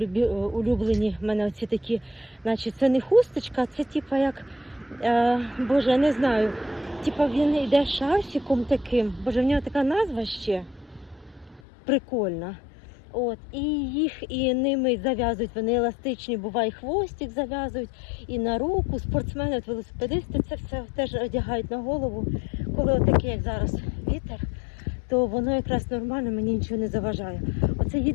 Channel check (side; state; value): right; drops out; at 11.6 s